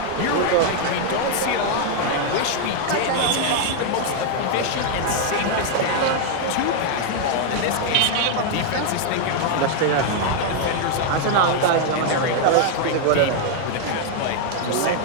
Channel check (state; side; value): different; both; correlation 0.00